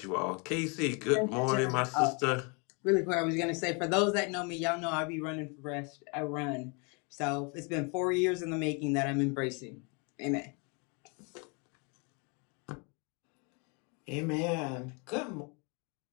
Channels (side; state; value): right; quieter; 33.4 dB